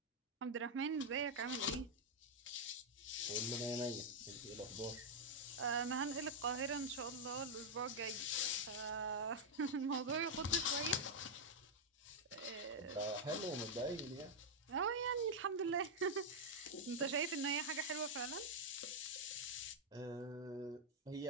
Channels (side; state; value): both; normal; correlation -0.02